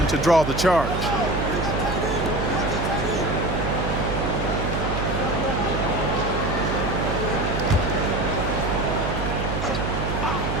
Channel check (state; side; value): noise; right; hum, 2 dB below the sound